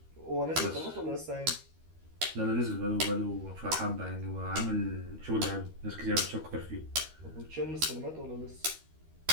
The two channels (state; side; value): late; left; 13 ms